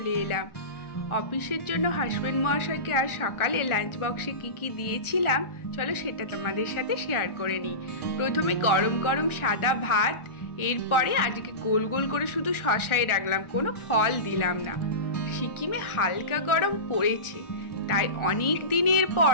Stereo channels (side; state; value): right; late; 1.4 ms